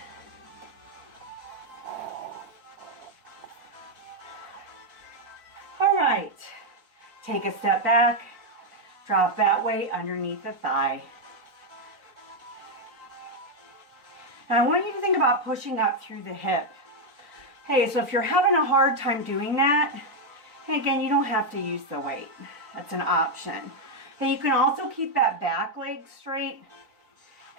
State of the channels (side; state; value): left; late; 3.9 ms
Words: All right, take a step back. Drop that weight underneath the thigh. Now I want you to think about pushing up through the hip. Hey, so if you're having a hard time doing that, hey, again, you don't have to use the weight. That's an option. Hey, you can also keep that back leg straight